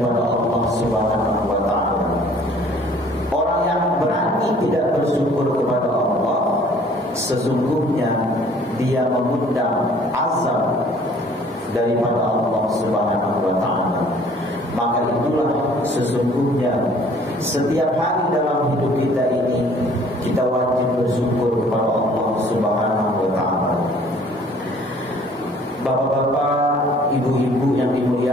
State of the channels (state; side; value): normal; both; correlation 0.55